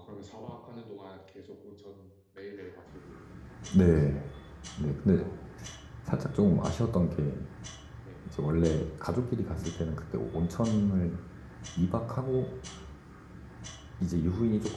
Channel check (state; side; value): identical; both; correlation 1.00